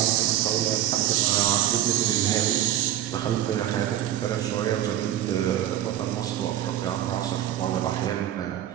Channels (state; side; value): quieter; left; 12.3 dB